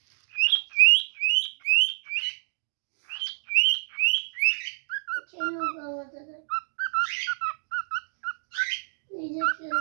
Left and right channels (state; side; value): silent; left; digital silence